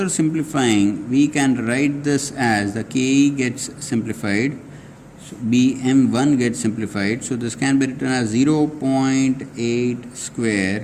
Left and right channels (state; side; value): identical; both; correlation 1.00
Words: simplifying, we can write this as the KE gets simplified, so BM1 gets simplified, so this can be written as 0.8